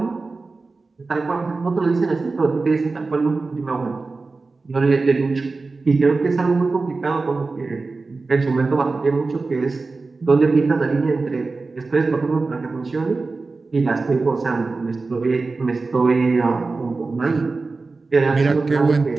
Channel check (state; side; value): quieter; left; 3.8 dB